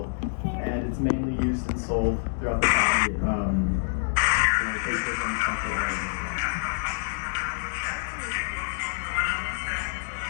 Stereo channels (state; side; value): silent; right; digital silence